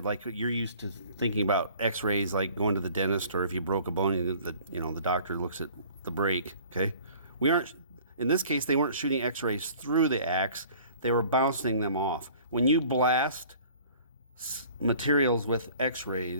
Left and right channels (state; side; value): inverted; both; correlation -0.50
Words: like you're used to thinking about X-rays, like going to the dentist, or if you broke a bone, the doctor looks at the break. Okay, we aren't. In this case, they weren't shooting X-rays through the axe. they were bouncing them off. When you blast materials with